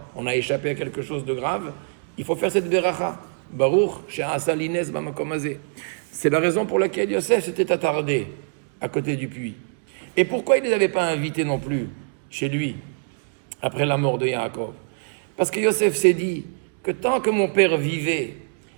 on a échappé à quelque chose de grave, il faut faire cette beracha baruch she'asali nes bamakom hazeh. C'est la raison pour laquelle Yosef s'était attardé à côté du puits. Et pourquoi il ne les avait pas invités non plus chez lui après la mort de Yaakov? Parce que Yosef s'est dit que tant que mon père vivait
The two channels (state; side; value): silent; left; digital silence